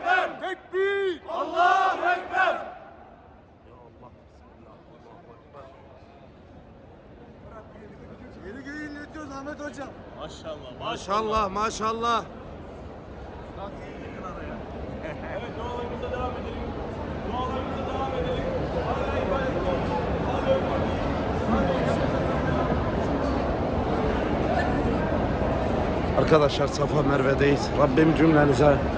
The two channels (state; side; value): identical; both; correlation 1.00